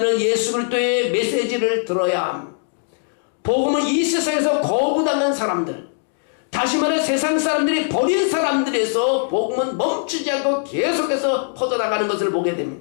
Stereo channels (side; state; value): right; silent; digital silence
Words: 예수 그리스도의 메시지를 들어야 합니다. 복음은 이 세상에서 거부당한 사람들, 다시 말해 세상 사람들이 버린 사람들에서 복음은 멈추지 않고 계속해서 퍼져나가는 것을 보게